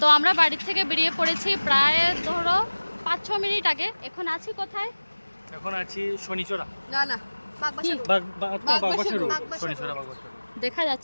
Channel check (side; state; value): both; inverted; correlation -1.00